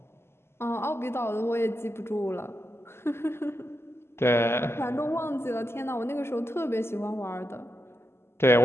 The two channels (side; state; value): right; late; 0.12 ms